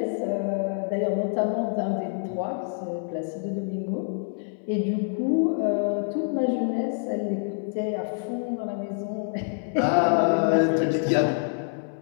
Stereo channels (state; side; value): silent; right; 61 dB below the other